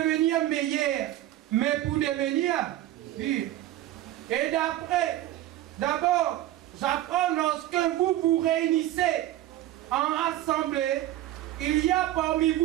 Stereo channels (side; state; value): left; quieter; 14.2 dB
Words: meilleur, mais pour devenir pire. Et d'abord, j'apprends lorsque vous vous réunissez en assemblée, il y a parmi